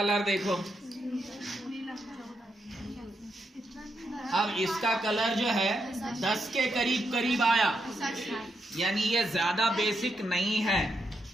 देखो, अब इसका कलर जो है 10 के करीब आया, यानी ये ज्यादा बेसिक नहीं है।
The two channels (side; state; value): both; normal; correlation 0.82